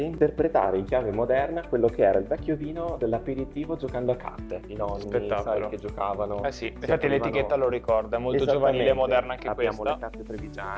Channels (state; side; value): identical; both; correlation 1.00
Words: in chiave moderna quello che era il vecchio vino dell'aperitivo giocando a carte. I nonni, Spettacolo. sai, che giocavano. Eh sì, si infatti aprivano- l'etichetta lo ricorda, è molto giovanile e Esattamente. moderna anche Abbiamo questa. le carte